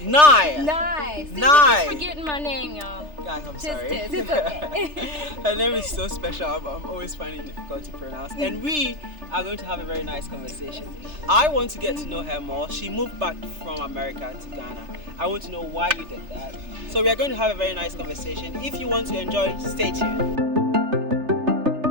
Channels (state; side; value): late; left; 3.3 ms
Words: See, Nice. you keep forgetting my name, y'all. Guys, I'm sorry. It's okay. Her name is so special. I'm always finding it difficult to pronounce. And we are going to have a very nice conversation. I want to get to know her more. She moved back from America to Ghana. I want to know why you did that. So we are going to have a very nice conversation. If you want to enjoy, stay tuned.